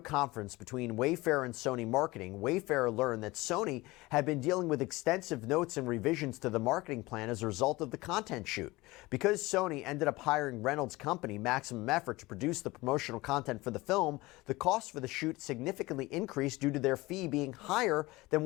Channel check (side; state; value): right; quieter; 21.0 dB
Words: between Wayfair and Sony Marketing, Wayfair learned that Sony had been dealing with extensive notes and revisions to the marketing plan as a result of the content shoot. Because Sony ended up hiring Reynolds' company, Maximum Effort, to produce the promotional content for the film, the cost for the shoot significantly increased due to their fee being higher than